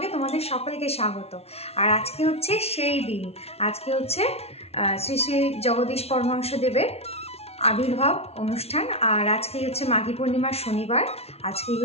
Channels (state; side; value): late; right; 0.30 ms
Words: তোমাদের সকলকে স্বাগত। আর আজকে হচ্ছে সেই দিন, আজকে হচ্ছে শ্রী শ্রী জগদীশ পরমহংসদেবের আবির্ভাব অনুষ্ঠান। আর আজকেই হচ্ছে মাঘী পূর্ণিমার শনিবার, আজকেই